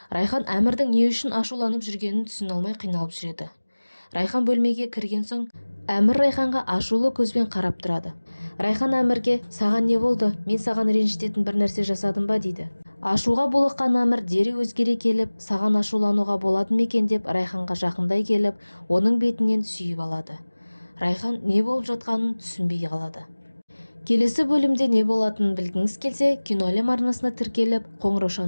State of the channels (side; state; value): both; inverted; correlation -1.00